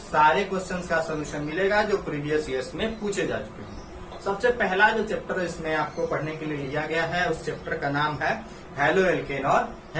क्वेश्चंस का सोल्यूशन मिलेगा जो प्रीवियस ईयर्स में पूछे जा चुके हैं। सबसे पहला जो चैप्टर इसमें आपको पढ़ने के लिए लिया गया है उस चैप्टर का नाम है हेलो एल्केन और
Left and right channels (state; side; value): identical; both; correlation 1.00